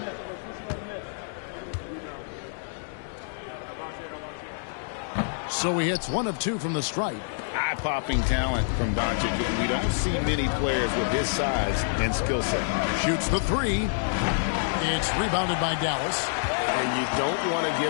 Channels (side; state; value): right; silent; digital silence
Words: So he hits 1 of 2 from the stripe. Eye-popping talent from Doncic. We don't see many players with his size and skill set. Shoots the 3. It's rebounded by Dallas. And you don't want to